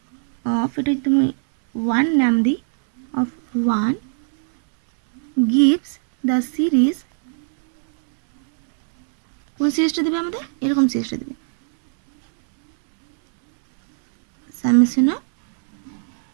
অফ, এটা তুমি 1 নাম দিই, অফ 1 গিভস দ্য সিরিজ, কোন সিরিজটা দেবে আমাদের, এরকম সিরিজটা দেবে, summation of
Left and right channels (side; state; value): left; silent; 66 dB below the other